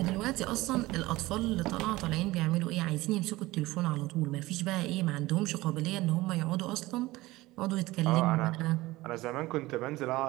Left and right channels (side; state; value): left; quieter; 19.2 dB